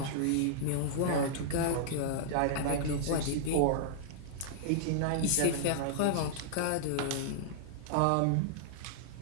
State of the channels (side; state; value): both; different; correlation -0.01